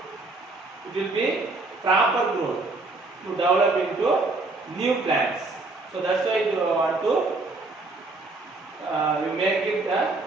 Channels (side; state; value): left; quieter; 3.3 dB